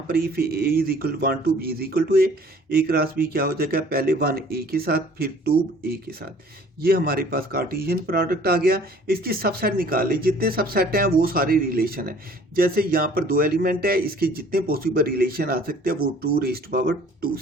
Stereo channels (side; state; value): both; normal; correlation 0.53